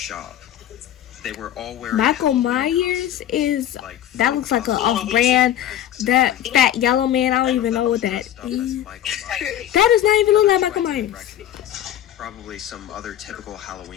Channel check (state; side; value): quieter; right; 11.5 dB